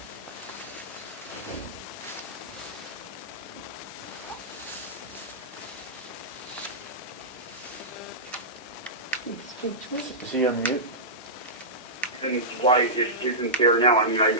Is he on mute? And why it isn't there now. I mean,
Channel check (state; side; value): normal; both; correlation -0.15